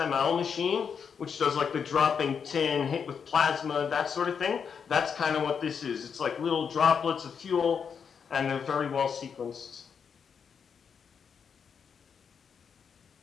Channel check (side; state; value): right; quieter; 6.7 dB